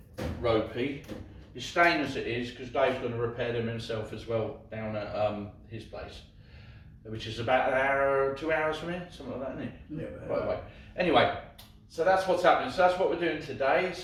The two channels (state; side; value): identical; both; correlation 1.00